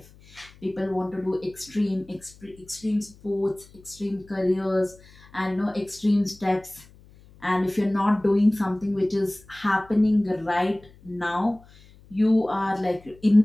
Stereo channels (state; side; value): noise; left; hum, 25 dB below the sound